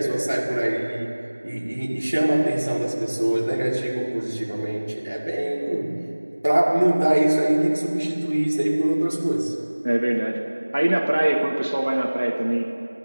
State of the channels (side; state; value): both; inverted; correlation -1.00